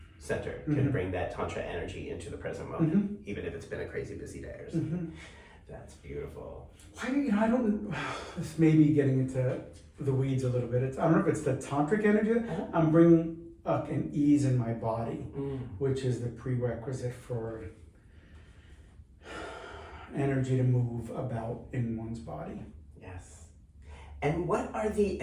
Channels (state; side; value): identical; both; correlation 1.00